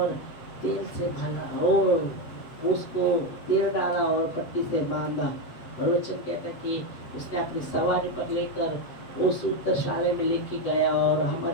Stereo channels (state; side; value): late; right; 7.9 ms